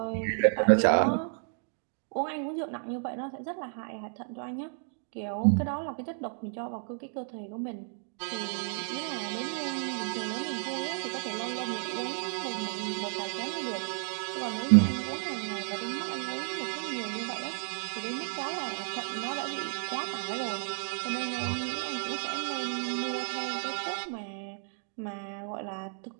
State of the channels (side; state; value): left; silent; 56 dB below the other